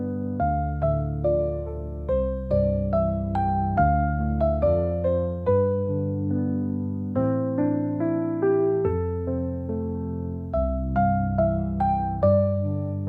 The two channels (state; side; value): identical; both; correlation 1.00